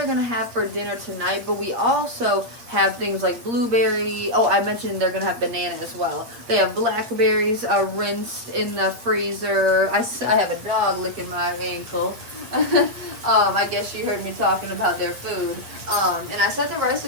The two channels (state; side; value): late; left; 8.5 ms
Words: gonna have for dinner tonight. But we also have things like blueberry. Oh, I mentioned they're gonna have banana as well. They have blackberries rinsed in the freezer. I have a dog licking my ankle. I guess you heard me talking about their food. And I set the rice